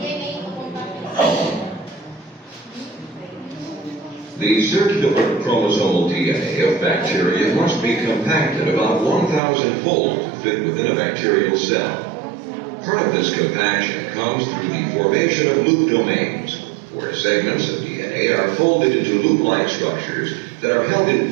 to compact itself? The circular chromosomal DNA of bacteria must be compacted about 1,000-fold to fit within a bacterial cell. Part of this compaction comes through the formation of loop domains, where segments of DNA are folded into loop-like structures that are held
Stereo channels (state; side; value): drops out; left; at 9.4 s